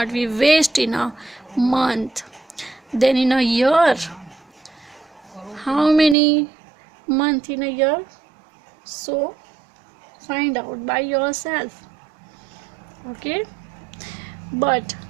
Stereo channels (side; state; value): left; drops out; at 6.2 s